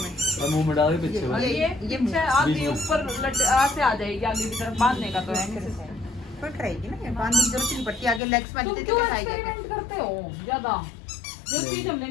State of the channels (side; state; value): right; drops out; at 8.2 s